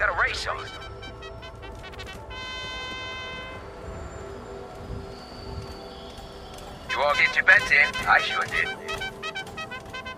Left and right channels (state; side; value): identical; both; correlation 1.00